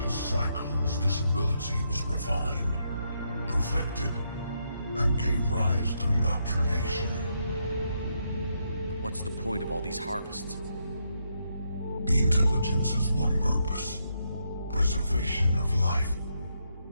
cycles, this ability was refined, perfected, and gave rise to indoctrination. What's the point of all these harvests? The intelligence has one purpose. Preservation of life.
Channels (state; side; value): inverted; both; correlation -0.79